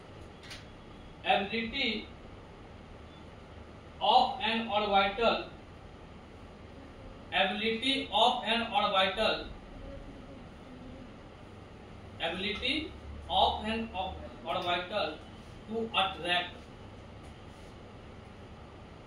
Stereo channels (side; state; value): both; identical; correlation 1.00